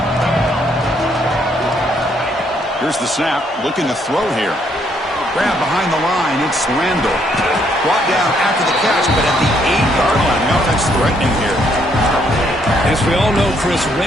Here's the snap, looking to throw here. Grab behind the line, it's Randall. Brought down after the catch, but at the 8-yard line, the offense threatening here. As we all know, Chris,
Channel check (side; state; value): both; normal; correlation 0.71